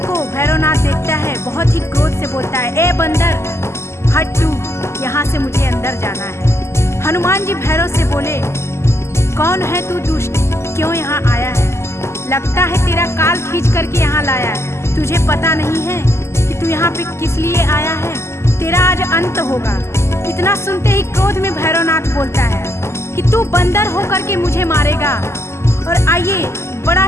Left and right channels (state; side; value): late; right; 0.13 ms